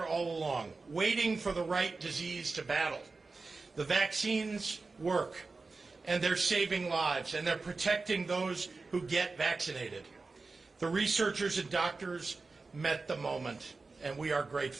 all along, waiting for the right disease to battle. The vaccines work, and they're saving lives, and they're protecting those who get vaccinated. The researchers and doctors met the moment, and we are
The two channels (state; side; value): quieter; left; 3.9 dB